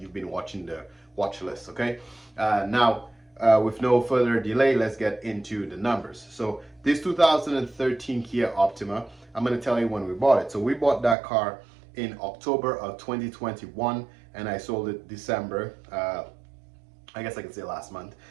been watching the watch list. Okay, now with no further delay, let's get into the numbers. So this 2013 Kia Optima, I'm going to tell you when we bought it. So we bought that car in October of 2021 and I sold it December, I guess I can say last month,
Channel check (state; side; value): drops out; left; at 11.2 s